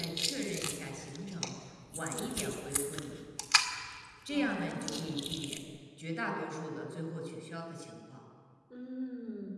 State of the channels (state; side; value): identical; both; correlation 1.00